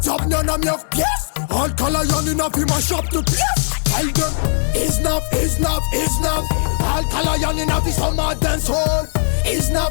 job niana miavy pièce Alka Lion inavy mashop de pièce Tell them is enough, is enough, is enough Alka Lion inavy soma dancehall Is enough,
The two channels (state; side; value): silent; right; digital silence